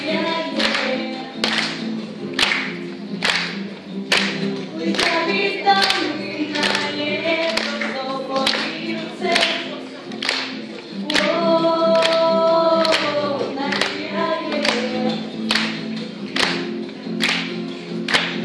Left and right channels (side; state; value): both; identical; correlation 1.00